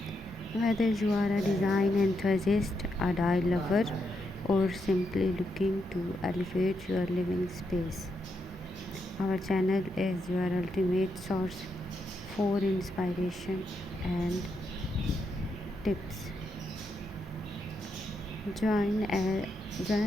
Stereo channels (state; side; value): normal; both; correlation 0.82